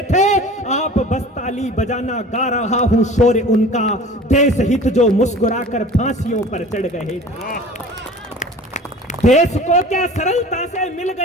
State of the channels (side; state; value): both; normal; correlation 0.42